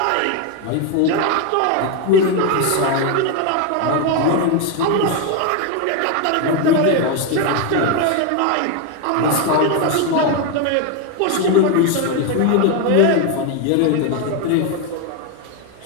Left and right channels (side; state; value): both; different; correlation 0.02